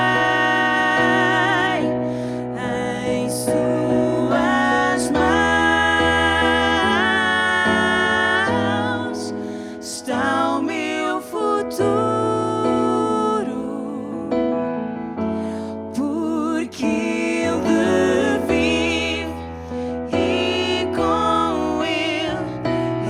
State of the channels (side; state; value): both; identical; correlation 1.00